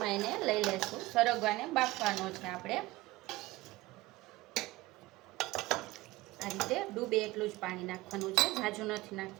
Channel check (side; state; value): left; quieter; 19.0 dB